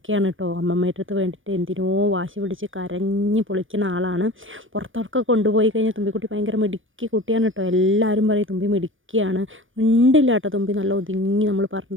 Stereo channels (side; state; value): left; late; 0.57 ms